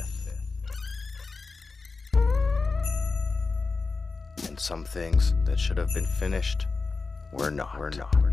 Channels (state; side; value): quieter; right; 4.1 dB